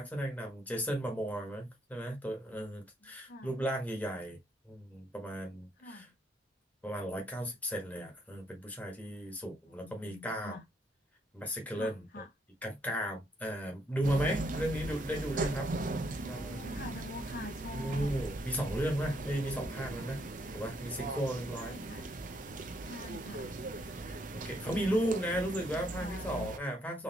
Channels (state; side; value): normal; both; correlation 0.73